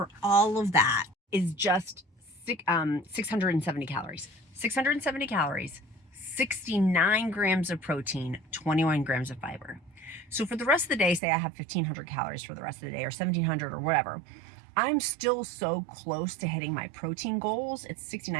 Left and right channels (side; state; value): left; drops out; at 11.2 s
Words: all of that is just 670 calories. 670 calories. 69 grams of protein, 21 grams of fiber. So for the rest of the day, say I have 1,500 calories for the rest of the day or 1,700 or whatever, I'm still so close to hitting my protein goals. It's